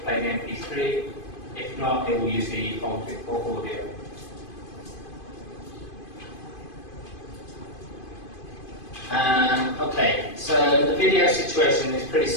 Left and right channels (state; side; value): late; right; 2.5 ms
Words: the MP3. If not, it will use the bulk audio. Okay, so the video situation is pretty